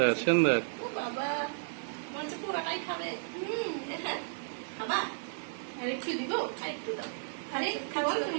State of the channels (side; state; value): left; silent; digital silence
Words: সুন্দর। ও বাবা, মনে হচ্ছে পুরোটাই খাবে। খাবা? আর একটু দিব? আর একটু দাও। আরে খাওয়ার